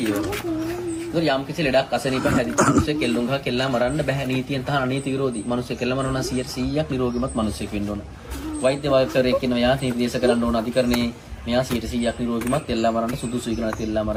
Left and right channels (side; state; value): both; identical; correlation 1.00